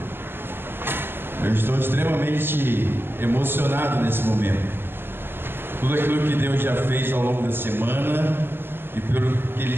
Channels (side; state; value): left; late; 0.10 ms